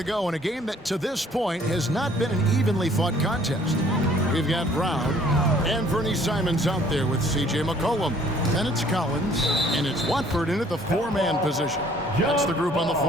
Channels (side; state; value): both; normal; correlation 0.58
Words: go in a game that to this point has not been an evenly fought contest. We've got Brown and Vernie Simons out there with C.J. McCollum. And it's Collins, and it's Watford in at the 4-man position. That's the group on the